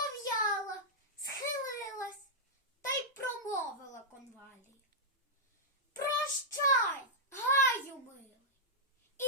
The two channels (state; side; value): normal; both; correlation -0.08